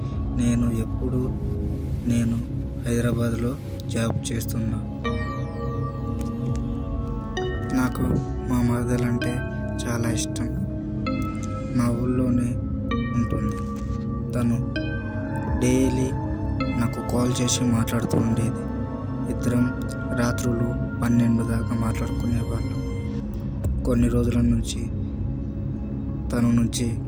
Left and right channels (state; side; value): identical; both; correlation 1.00